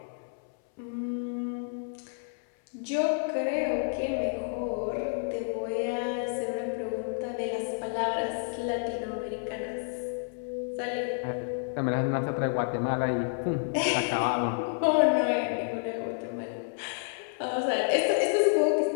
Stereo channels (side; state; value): right; silent; 58 dB below the other